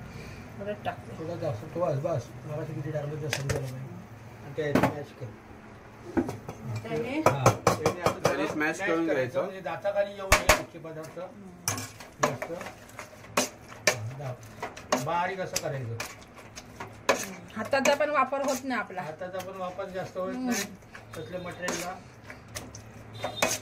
परत टाकते. थोडं जास्त तो बस मगाशी किती टाकलं तर समजायला पाहिजे. आणि त्या मॅच कर. त्याने त्याने smash करून घ्यायचं. म्हणजे दाताखाली येऊ नये कुठचे पदार्थ जास्त. बारीक असं करायचं. हाताचा पण वापर होत नाही आपला. हाताचा पण वापर जास्त होत नाही तसल्या मटेरियलला.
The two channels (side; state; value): both; identical; correlation 1.00